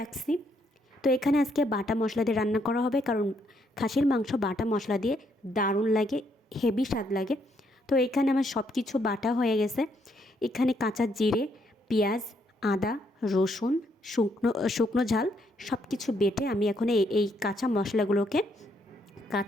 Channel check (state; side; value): normal; both; correlation 0.73